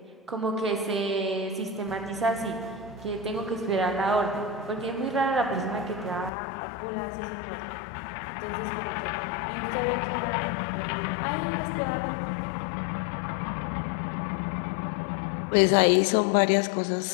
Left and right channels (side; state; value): right; drops out; at 6.3 s